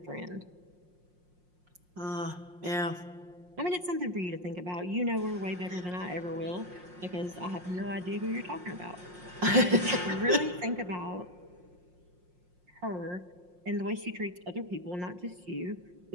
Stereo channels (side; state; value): left; late; 5.6 ms